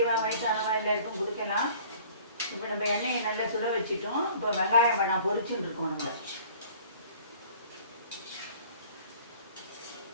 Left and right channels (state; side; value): inverted; both; correlation -0.50